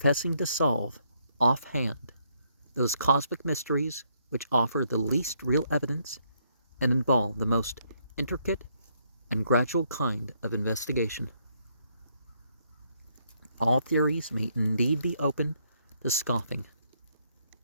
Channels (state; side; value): inverted; both; correlation -0.72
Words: to solve offhand those cosmic mysteries which offer the least real evidence and involve the most intricate and gradual kind of investigation. All theories may indeed be open to scoffing,